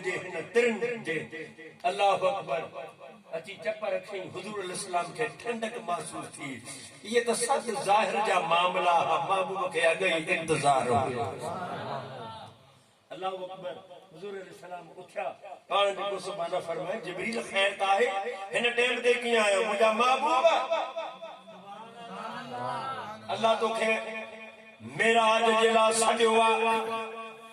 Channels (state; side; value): identical; both; correlation 1.00